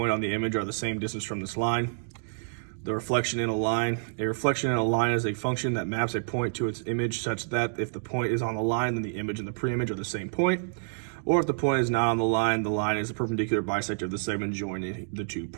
on the image are the same distance from this line. The reflection in a line. A reflection in a line is a function that maps a point to its image such that if the point is on the line, then the image and the pre-image are the same point. Or if the point is not on the line is a perpendicular bisector of the segment joining the 2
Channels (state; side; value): silent; left; digital silence